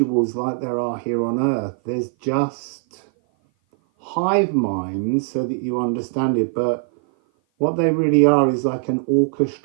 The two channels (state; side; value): silent; left; 56 dB below the other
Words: like there are here on earth. There's just hive minds, so that you understand it, but what they really are is like an